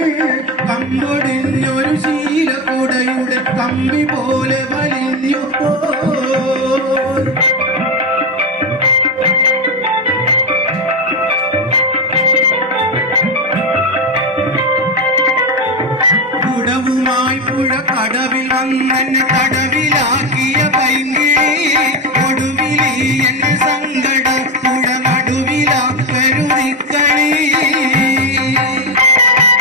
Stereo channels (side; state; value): both; normal; correlation 0.13